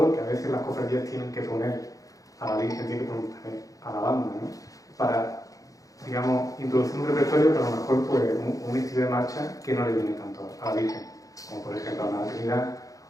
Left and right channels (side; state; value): right; late; 0.17 ms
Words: que a veces las cofradías tienen que poner a la Virgen, tienen que poner a la banda, ¿no? Para, digamos, introducir un repertorio, pero a lo mejor pues, un estilo de marcha que no le viene tanto a la Virgen, como por ejemplo a la Trinidad,